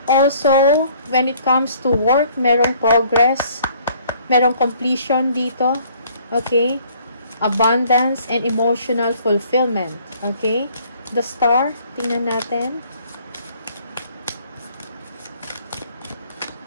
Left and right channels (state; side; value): inverted; both; correlation -0.58